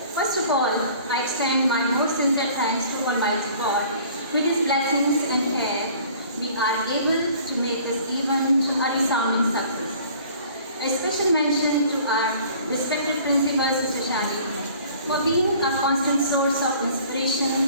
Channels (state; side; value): inverted; both; correlation -0.51